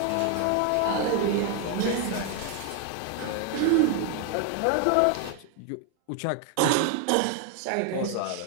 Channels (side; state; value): both; different; correlation 0.01